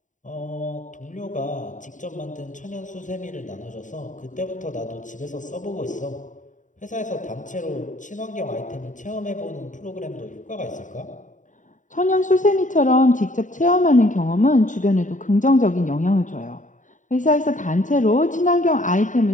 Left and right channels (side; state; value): right; late; 0.37 ms